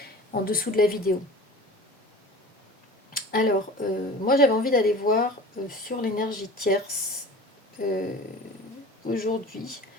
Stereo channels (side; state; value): both; normal; correlation 0.39